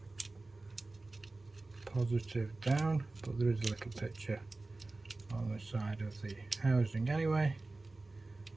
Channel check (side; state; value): left; quieter; 3.2 dB